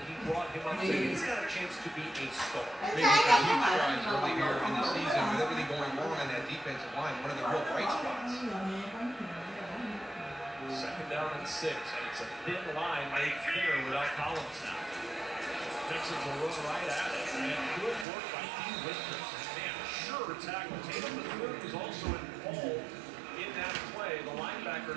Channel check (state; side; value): drops out; left; at 18.1 s